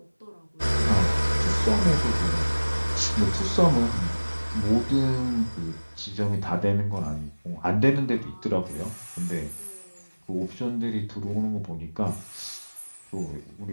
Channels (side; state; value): both; inverted; correlation -1.00